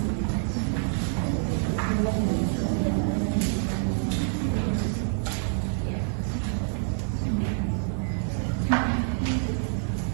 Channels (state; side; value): silent; left; digital silence